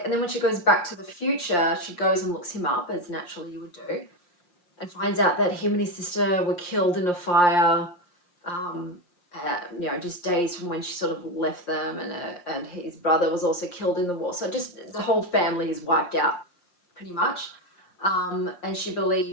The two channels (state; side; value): late; right; 5.7 ms